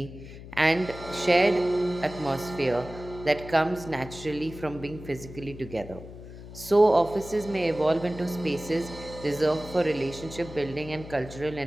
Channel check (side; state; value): left; noise; hum, 14 dB below the sound